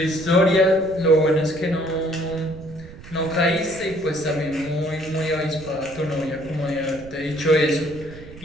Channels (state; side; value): noise; right; rumble, 17 dB below the sound